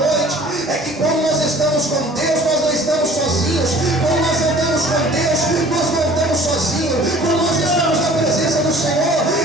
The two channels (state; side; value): normal; both; correlation 0.49